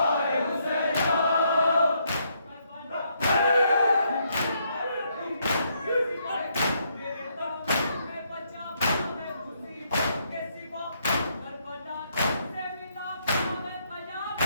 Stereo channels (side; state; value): both; inverted; correlation -0.74